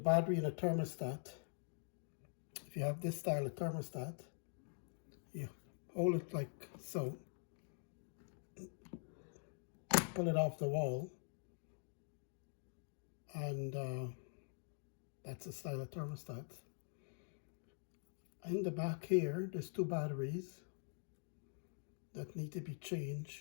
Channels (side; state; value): right; silent; digital silence